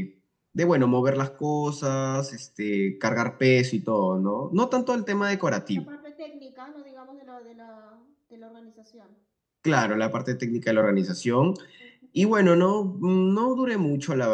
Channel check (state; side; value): identical; both; correlation 1.00